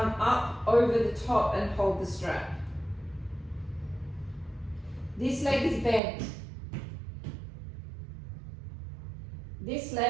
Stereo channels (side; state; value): left; drops out; at 6.0 s